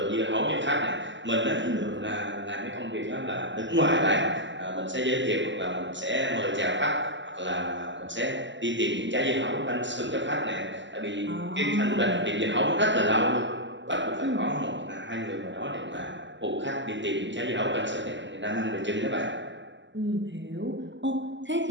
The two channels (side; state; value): left; late; 0.54 ms